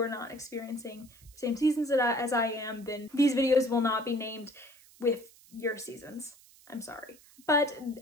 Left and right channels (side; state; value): right; noise; hiss, 25 dB below the sound